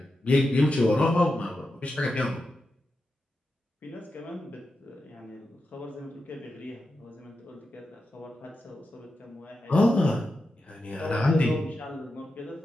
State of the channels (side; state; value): both; normal; correlation 0.89